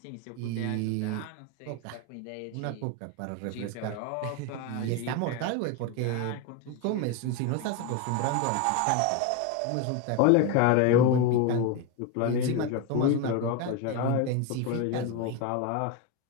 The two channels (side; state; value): both; different; correlation 0.02